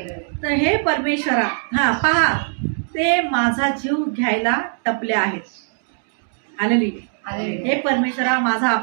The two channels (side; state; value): left; silent; digital silence